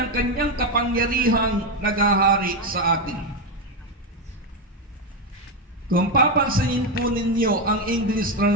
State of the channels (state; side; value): normal; both; correlation 0.09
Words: kanyang kapangyarihang naghahari sa atin." Kung papansinin po ninyo ang English